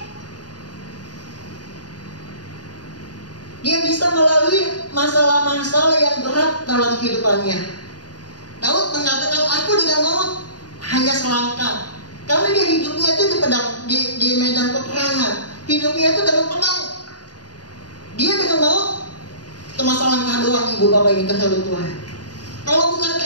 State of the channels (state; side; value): late; right; 0.69 ms